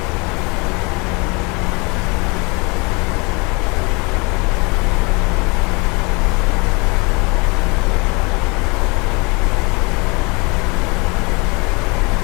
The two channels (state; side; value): quieter; right; 28.5 dB